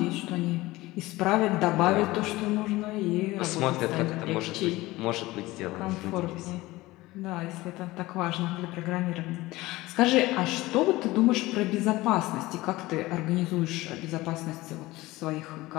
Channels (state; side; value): quieter; right; 19.3 dB